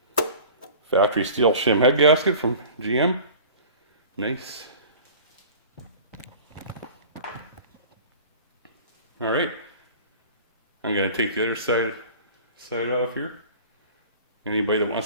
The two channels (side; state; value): both; inverted; correlation -0.42